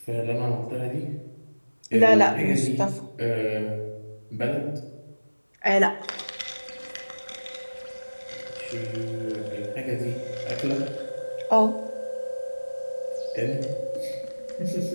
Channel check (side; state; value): both; inverted; correlation -1.00